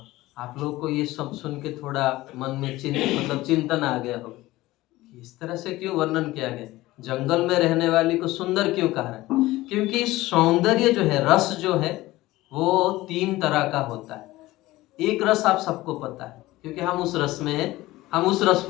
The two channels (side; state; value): right; quieter; 17.9 dB